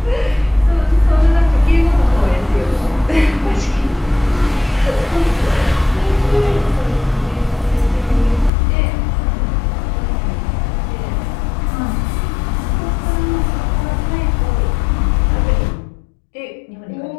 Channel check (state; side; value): drops out; right; at 8.5 s